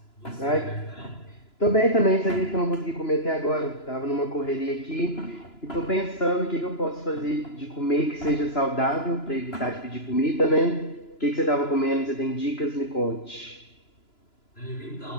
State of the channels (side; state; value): right; late; 2.9 ms